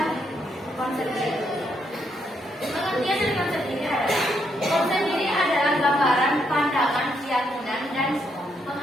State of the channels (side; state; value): both; normal; correlation 0.76